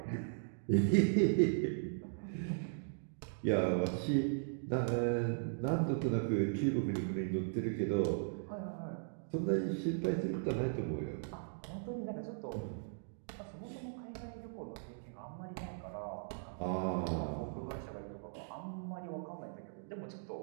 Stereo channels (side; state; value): left; silent; digital silence